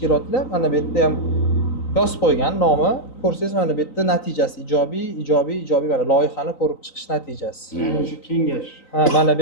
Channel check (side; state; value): right; late; 3.9 ms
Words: mana bu yerda ham yozib qo'ygan nomi, ko'rsangiz mana bu yerda natijasi ijobiy mana loyihani ko'rib chiqish natijasi. Mana shu kengash. Mana bu